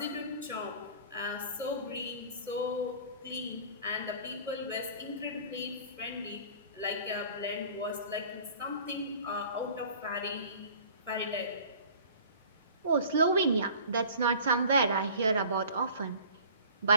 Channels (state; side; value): inverted; both; correlation -0.46